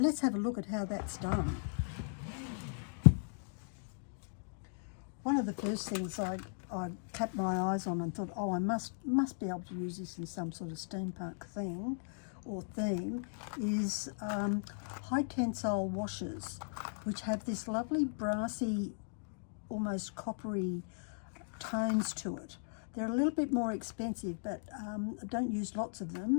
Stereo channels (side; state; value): right; silent; digital silence